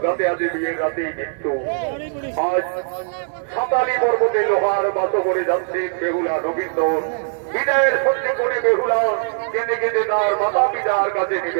সাথে আজ বিয়ের রাতেই মৃত্যু। আজ সাঁতালি পর্বতে লোহার বাস করে যাচ্ছে বেহুলা রবীন্দ্র। বিদায়ের সত্যি করে বেহুলা কেঁদে কেঁদে তার মাতা পিতার কাছে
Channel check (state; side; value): silent; left; 65 dB below the other